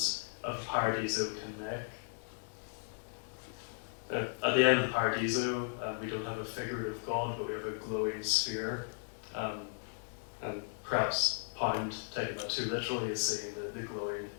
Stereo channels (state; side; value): silent; right; 54 dB below the other